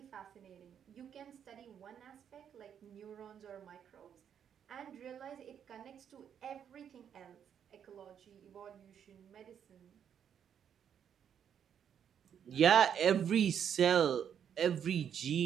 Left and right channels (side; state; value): left; quieter; 8.5 dB